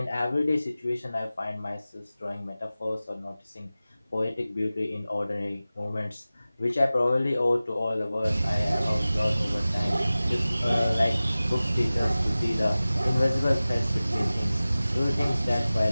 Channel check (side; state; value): both; inverted; correlation -0.96